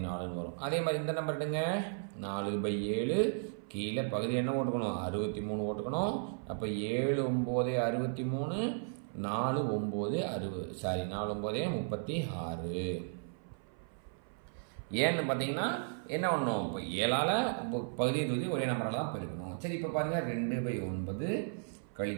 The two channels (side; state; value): left; silent; 54 dB below the other